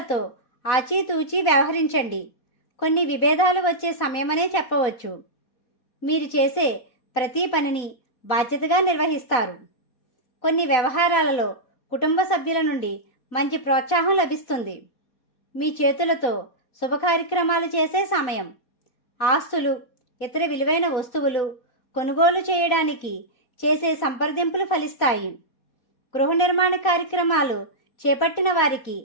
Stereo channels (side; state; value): right; late; 4.0 ms